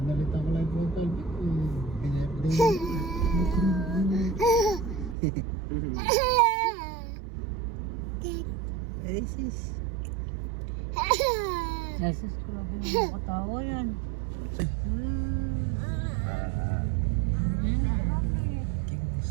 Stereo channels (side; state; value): left; drops out; at 5.2 s